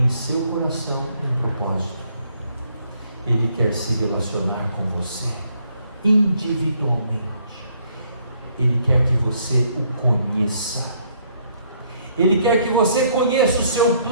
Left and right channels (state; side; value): inverted; both; correlation -0.68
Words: em seu coração um propósito. Ele quer se relacionar com você individualmente. Ele quer que você o conheça. Ele quer que você conheça o seu